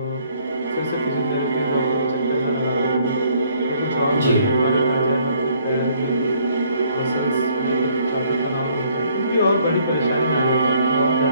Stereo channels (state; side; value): inverted; both; correlation -0.64